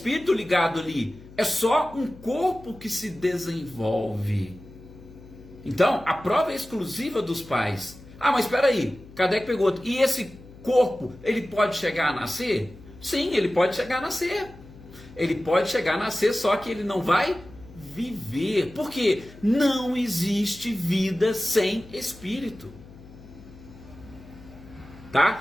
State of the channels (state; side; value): noise; left; hum, 20 dB below the sound